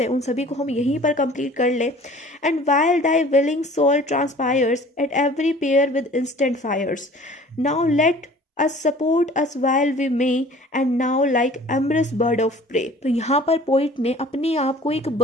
उन सभी को हम यहीं पर कंप्लीट कर लें। And while thy willing soul transpires at every pore with instant fires, now let us support us while we may and now like amorous bird of prey। तो यहाँ पर पोइट ने अपने आप को एक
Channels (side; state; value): both; normal; correlation 0.48